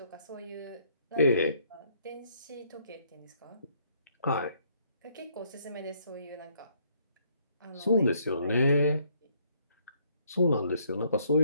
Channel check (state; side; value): inverted; both; correlation -0.68